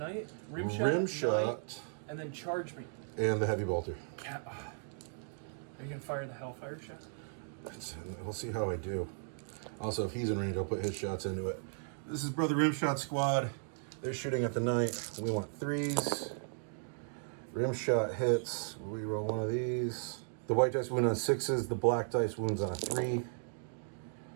rim shot, Knight, and then charge me. and the heavy bolter. Yeah. Are you going to fire the Hellfire shot? We'll see how I do. Also, if he's in range, I'll put his shots into it. This is Brother Rimshot Squad. They're shooting at the knight. We want 3s. Rimshot hits. We roll one of these. The white dice wound on 6s. The black dice wounds on a 3.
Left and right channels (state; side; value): silent; left; digital silence